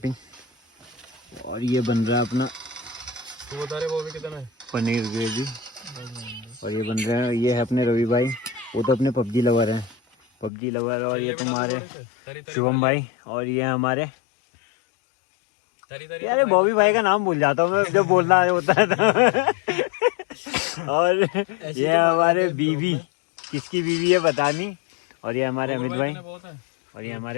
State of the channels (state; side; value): drops out; right; at 10.5 s